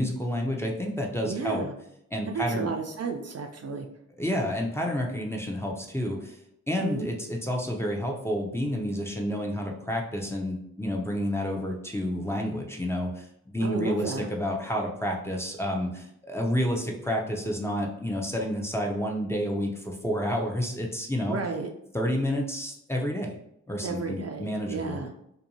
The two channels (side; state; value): both; normal; correlation 0.64